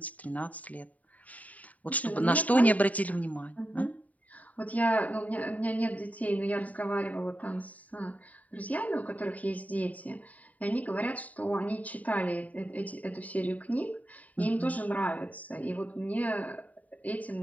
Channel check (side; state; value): right; late; 0.071 ms